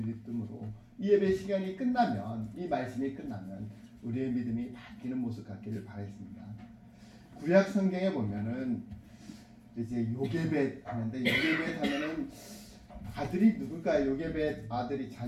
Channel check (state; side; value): identical; both; correlation 1.00